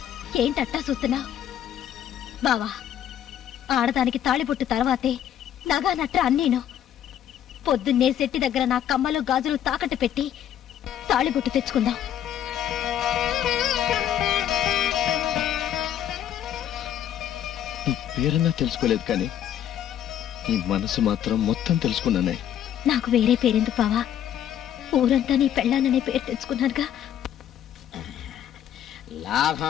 ఏంటట్టా చూస్తున్నా బావా? ఆడదానికి తాళిబొట్టు తర్వాతే నగా నట్ట అన్నీను. పొద్దున్నే శెట్టి దగ్గర నా కమ్మలు గాజులు తాకట్టు పెట్టి తాళిబొట్టు తెచ్చుకుందాం. నీ పేరన్నా తెలుసుకోలేదు కానీ నీ మనసు మాత్రం మొత్తం తెలుసుకున్నానే. నాకు వేరే పేరెందుకు బావా? ఊరంతా నీ పెళ్ళాననే పేరు తెచ్చుకున్నానుగా.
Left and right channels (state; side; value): quieter; right; 10.5 dB